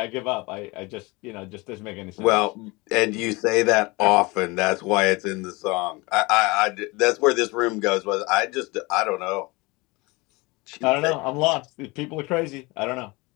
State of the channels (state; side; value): quieter; right; 24.7 dB